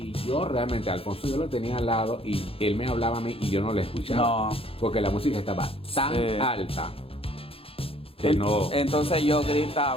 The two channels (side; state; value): right; late; 0.27 ms